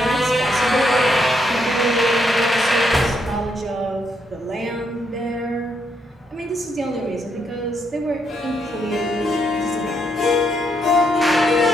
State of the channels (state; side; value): normal; both; correlation 0.76